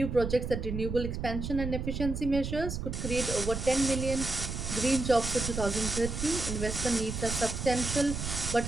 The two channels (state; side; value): noise; right; rumble, 4 dB below the sound